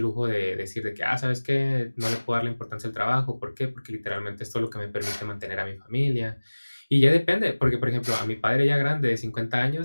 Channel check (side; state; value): both; inverted; correlation -1.00